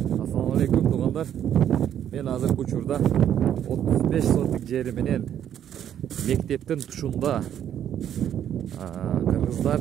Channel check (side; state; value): left; quieter; 10.0 dB